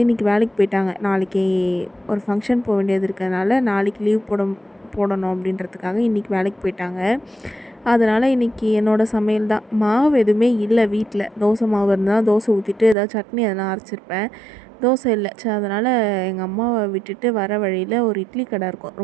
இன்றைக்கி வேலைக்கு போயிட்டாங்க. நாளைக்கு ஒரு ஃபங்க்ஷன் போக வேண்டியது இருக்கிறதுனால நாளைக்கு லீவ் போடணும் அப்படின்றதுக்காக இன்றைக்கி வேலைக்கு போயிட்டாங்க. அதனால் இன்றைக்கி என்னோடய சமையல் தான். மாவு எதுவுமே இல்லை வீட்டில். தோசை மாவு இருந்தால் தோசை ஊற்றிட்டு ஏதாவது சட்னி எதனா அரைச்சிருப்பேன். தோசை இல்லை. சரி, அதனால் எங்கள் அம்மாவை விட்டுட்டு வர வழியில் ஒரு இட்லி கடை இருக்கும்.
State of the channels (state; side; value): drops out; left; at 13.0 s